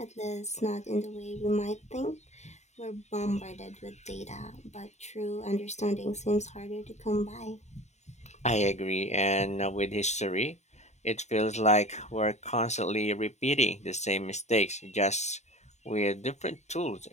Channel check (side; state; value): right; late; 0.33 ms